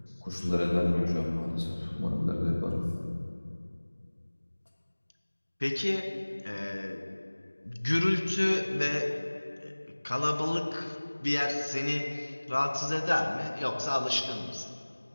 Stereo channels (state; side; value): inverted; both; correlation -1.00